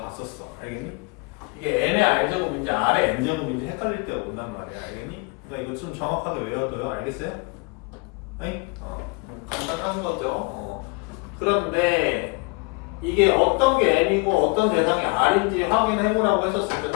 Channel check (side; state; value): right; quieter; 29.5 dB